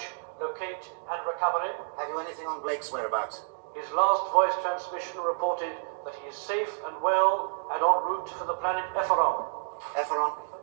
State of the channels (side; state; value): left; silent; digital silence